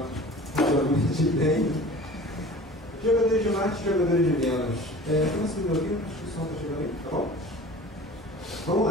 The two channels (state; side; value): normal; both; correlation 0.41